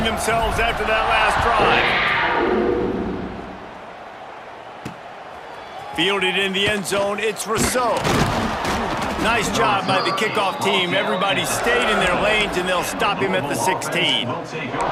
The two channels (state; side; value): identical; both; correlation 1.00